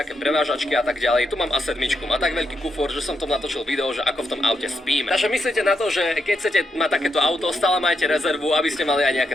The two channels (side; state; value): both; normal; correlation 0.81